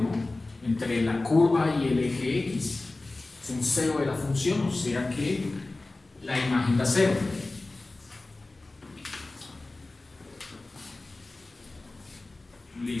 entre la curva y el eje X. Es un cero de la función, o sea que la imagen da 0.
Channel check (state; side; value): quieter; right; 3.1 dB